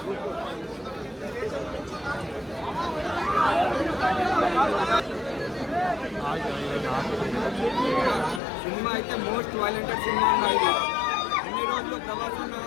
సినిమా అయితే మోస్ట్ వైలెంటెడ్ సినిమా అన్నది. అన్ని రోజులు ప్రభాస్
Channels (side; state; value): right; drops out; at 8.4 s